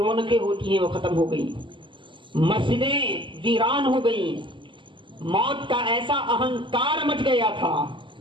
ہوتی ہیں وہ ختم ہو گئی۔ مسجدیں ویران ہو گئی۔ موت کا ایسا اہنکار مچ گیا تھا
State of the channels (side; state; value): left; late; 0.24 ms